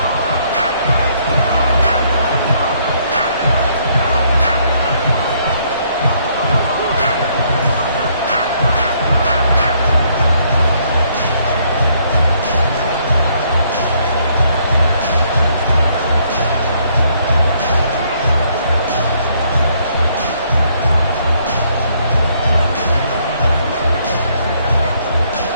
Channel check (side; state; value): both; inverted; correlation -0.68